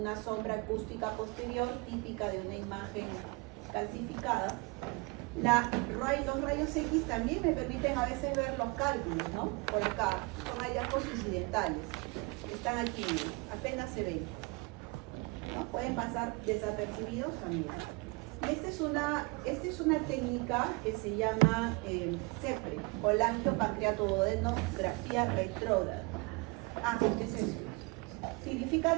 sombra acústica posterior típica de una imagen calcificada. Los rayos X también me permiten a veces ver los cálculos, ¿no? Por acá, son hallazgos incidentales. Están aquí, apenas se ven, ¿no? Pueden pasar desapercibidos también. Y esta es una técnica que se llama CEPRE, colangiopancreatoduodenografía retrógrada. ¿Qué es eso?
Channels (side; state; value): left; quieter; 27.4 dB